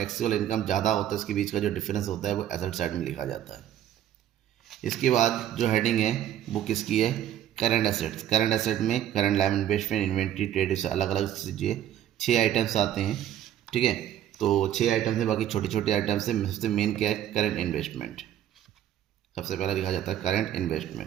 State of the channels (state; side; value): quieter; left; 11.3 dB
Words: इनकम ज़्यादा होता है, इसके बीच का जो डिफरेंस होता है वो एसेट साइड में लिखा जाता है। इसके बाद जो हेडिंग है वो किसकी है, करंट एसेट्स। करंट एसेट में current live investment, inventory, trade, से अलग अलग चीज़ें 6 आइटम्स आते हैं, ठीक है। तो 6 आइटम्स है, बाकी छोटे छोटे आइटम्स है। सबसे मेन क्या है, करंट इन्वेस्टमेंट। सबसे पहला लिखा जाता है करंट